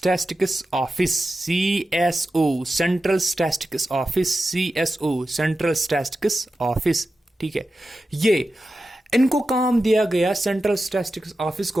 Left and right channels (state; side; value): normal; both; correlation 0.92